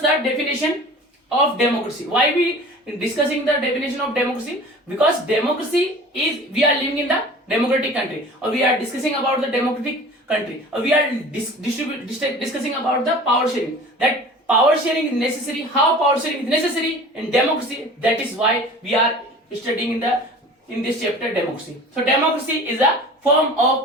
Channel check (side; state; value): both; normal; correlation 0.41